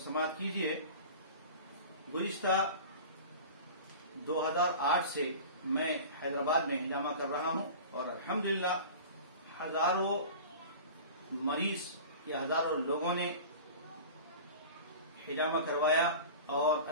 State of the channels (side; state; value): both; inverted; correlation -0.36